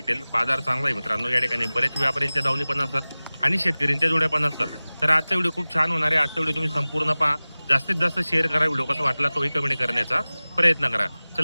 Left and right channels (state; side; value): inverted; both; correlation -0.99